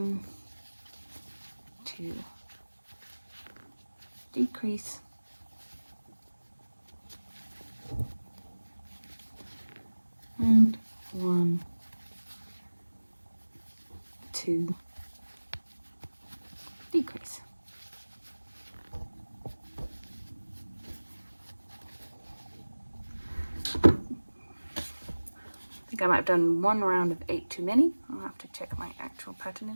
2, decrease. And 1, 2, decrease. I think I might have done 1 round of 8 too many. I'll have to check my actual pattern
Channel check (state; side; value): inverted; both; correlation -1.00